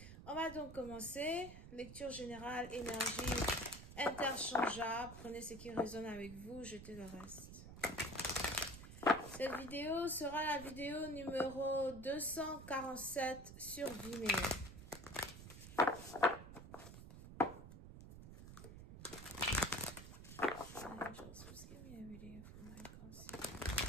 On va donc commencer. Lecture générale, énergie interchangeable. Prenez ce qui résonne avec vous, jetez le reste. Cette vidéo sera la vidéo numéro 247 sur Vimeo. Angels, please give me a reading for my conscience.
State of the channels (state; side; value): noise; right; rumble, 13 dB below the sound